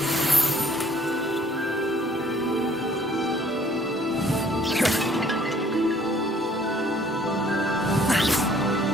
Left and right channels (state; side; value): normal; both; correlation 0.59